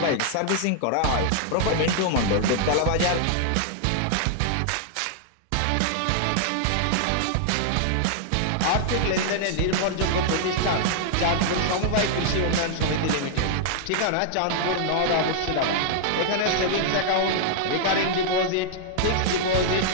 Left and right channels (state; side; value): different; both; correlation -0.01